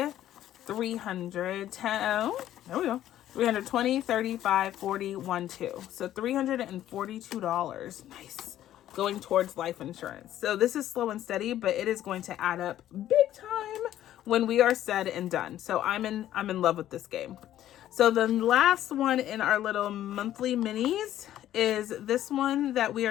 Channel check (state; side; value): quieter; right; 12.4 dB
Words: 300, 10. Oh, there we go. 320, 35, 40, 1, 2. So $342. Nice. Going towards life insurance. So this is slow and steady, but it is going to add up big time when we are said and done. So I'm in love with this game. So the last one in our little monthly minis is this one that we